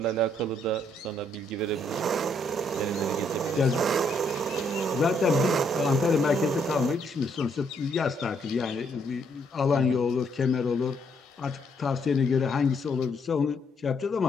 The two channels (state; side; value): normal; both; correlation 0.71